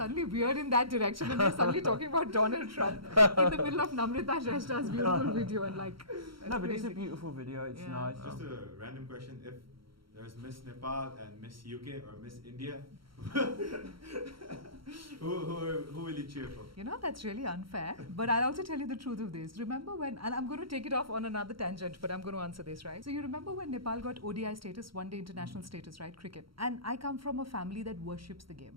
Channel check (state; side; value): late; left; 0.74 ms